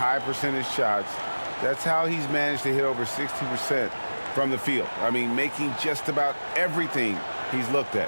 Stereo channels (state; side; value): inverted; both; correlation -1.00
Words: percentage shots. That's how he's managed to hit over 60% from the field. I mean, making just about everything he's looked